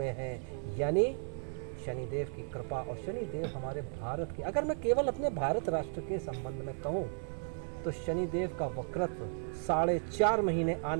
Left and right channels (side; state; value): left; silent; 55 dB below the other